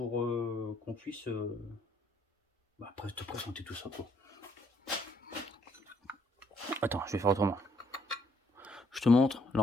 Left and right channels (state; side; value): normal; both; correlation 0.69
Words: qu'on puisse après te présenter tout ça, quoi. Attends, je vais faire autrement. Je te montre